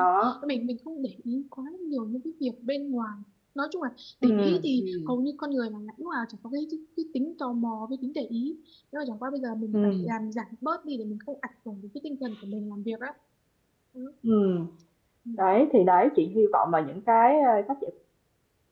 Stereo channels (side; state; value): both; identical; correlation 1.00